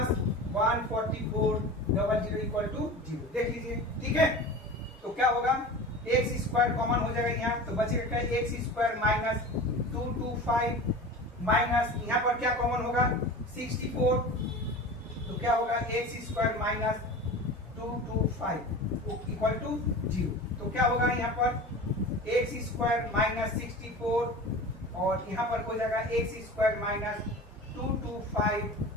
144 00 equal to 0, देख लीजिए, ठीक है। तो क्या होगा एक्स स्क्वायर कॉमन हो जाएगा यहाँ, तो बचेगा क्या एक्स स्क्वायर माइनस 225 माइनस यहाँ पर क्या कॉमन होगा 64, तो क्या होगा X square minus 225 225 equal to 0। तो क्या होगा यहाँ पर एक्स स्क्वायर माइनस 64 और यहाँ पर हो जाएगा X square minus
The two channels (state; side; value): normal; both; correlation 0.34